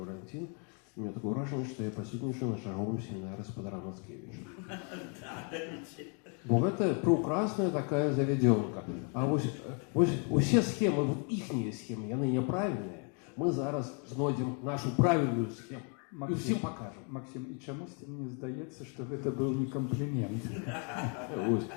У меня такое выражение, что я присутнічаю на чарговым семинаре спадара Мацкевича. Бо гэта прекрасная такая заведёнка. А вось усе схемы, вот іхнія схемы, яны няправільныя. Мы зараз знойдзем нашу правильную схему и всем покажем. Максим, и чамусьці мне здаецца, что это был не комплимент.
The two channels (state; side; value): quieter; right; 38.7 dB